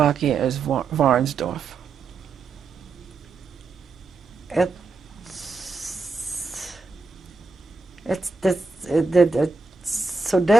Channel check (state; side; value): quieter; left; 4.4 dB